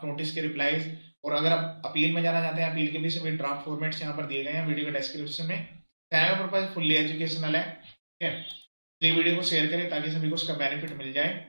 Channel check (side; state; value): both; inverted; correlation -1.00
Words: नोटिस के रिप्लाईज। और अगर आप अपील में जाना चाहते हैं, अपील के भी सभी ड्राफ्ट फॉर्मेट्स यहाँ पर दिए गए हैं वीडियो के डिस्क्रिप्शन में। चैनल का पर्पज फुल्ली एजुकेशनल है, ठीक है। ये वीडियो को शेयर करें ताकि सभी को उसका बेनिफिट मिल जाए।